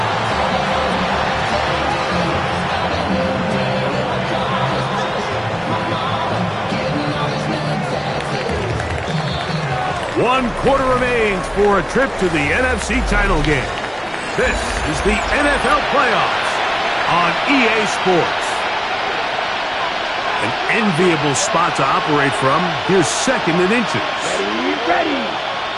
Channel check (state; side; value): identical; both; correlation 1.00